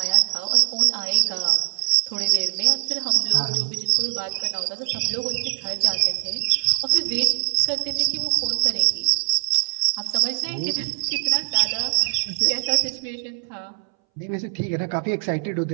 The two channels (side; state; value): left; silent; 62 dB below the other